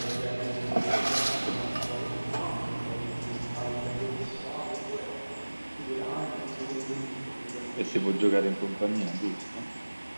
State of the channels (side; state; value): both; inverted; correlation -1.00